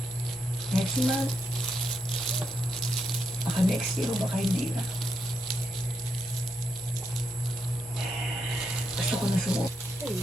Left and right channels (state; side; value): normal; both; correlation 0.81